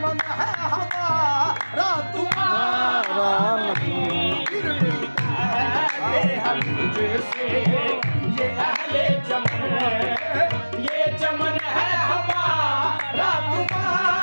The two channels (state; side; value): inverted; both; correlation -1.00